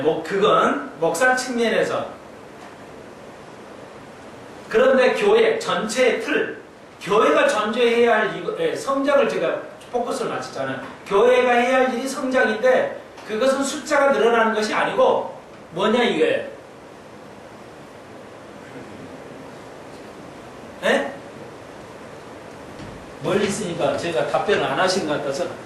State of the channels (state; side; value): identical; both; correlation 1.00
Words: 그건 목사 측면에서. 그런데 교회 전체의 틀, 교회가 전제해야 할 성장을 제가 포커스를 맞췄잖아요. 교회가 해야 할 일이 성장인데 그것은 숫자가 늘어나는 것이 아니고 뭐냐 이거예요. 멀리 있으니까 제가 답변을 안 하신 것 같아서